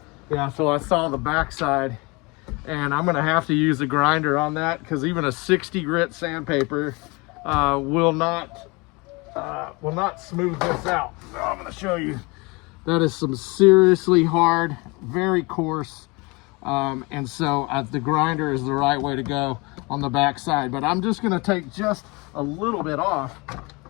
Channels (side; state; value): right; quieter; 26.8 dB